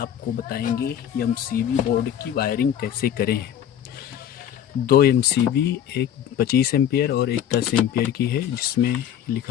बताएंगे एमसीबी बोर्ड की वायरिंग कैसे करें। दो एमसीबी, एक 25 एम्पियर और एक 10 एम्पियर की है, जिसमें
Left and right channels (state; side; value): quieter; right; 10.0 dB